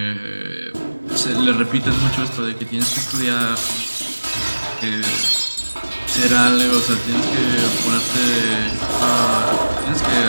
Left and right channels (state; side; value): inverted; both; correlation -1.00